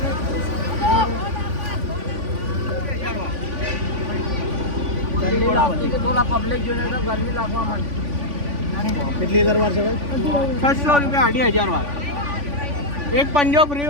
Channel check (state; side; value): late; left; 3.5 ms